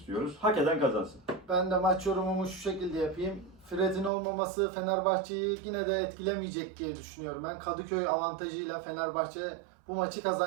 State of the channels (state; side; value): drops out; left; at 4.1 s